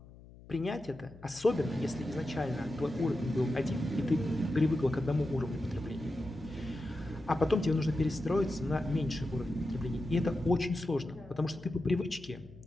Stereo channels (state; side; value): noise; left; hum, 20 dB below the sound